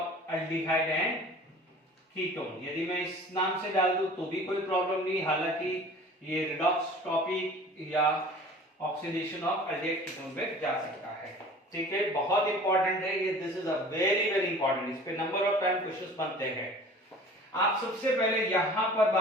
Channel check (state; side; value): normal; both; correlation 0.45